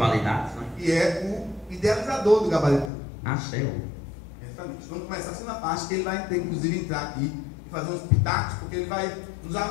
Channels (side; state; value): right; drops out; at 2.9 s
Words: né? E é o idealizador do Gabaritando. Ah, céu. Exatamente. Vamos começar a segunda parte, que ele vai inclusive entrar aqui e fazer uns pitacos, porque ele vai nos